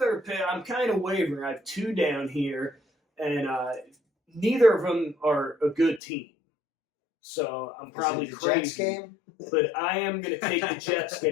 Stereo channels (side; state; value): right; drops out; at 6.0 s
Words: pick, I'm kind of wavering. I have 2 down here, and neither of them are a good team. So I'm Is probably it the crazy. Jets game? But I am going to take the Jets